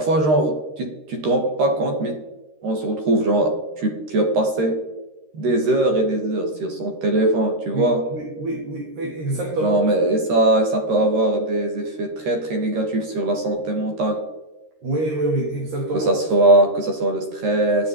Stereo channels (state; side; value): late; left; 13 ms